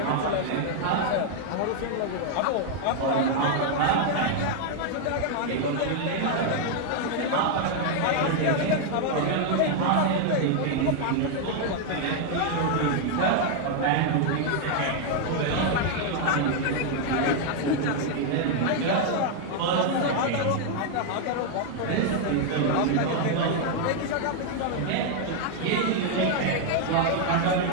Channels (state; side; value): different; both; correlation 0.00